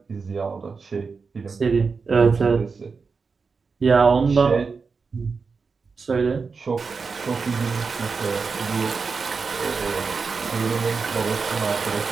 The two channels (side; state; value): left; quieter; 4.9 dB